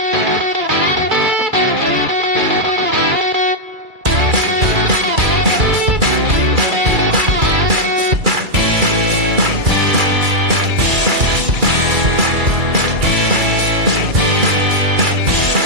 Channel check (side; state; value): left; late; 2.3 ms